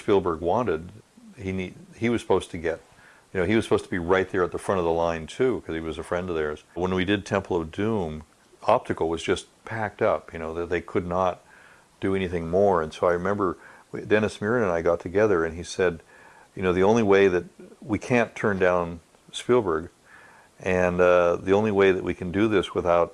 wanted, he was supposed to get. He was supposed to be right there at the front of the line too, because he was a friend of theirs. When we did Temple of Doom, optical was just packed up. That they could not do anything more. And so I remember Dennis Muren and I got together, and he said, the only way that we can't turn down Spielberg, and the only way that we can do this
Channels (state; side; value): identical; both; correlation 1.00